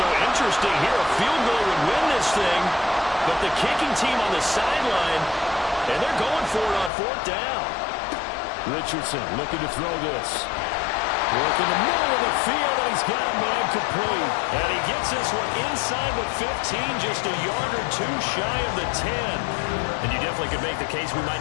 interesting here. A field goal would win this thing, but the kicking team on the sideline, and they're going for it on 4th down. Richardson looking to throw this. Work in the middle of the field, and he's got a man complete. And he gets this one inside the 15, just a yard or 2 shy of the 10. And you definitely could make the case we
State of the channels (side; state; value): right; drops out; at 6.9 s